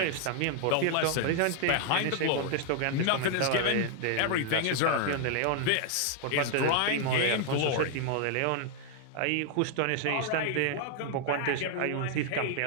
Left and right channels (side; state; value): both; different; correlation 0.00